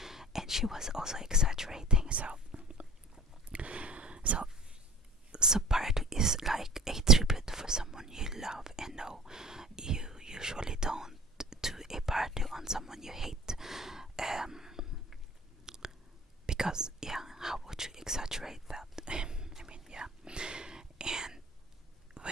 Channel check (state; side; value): normal; both; correlation 0.43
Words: someone you hate. Um, because yeah, how would you exaggerate that? I mean, yeah. And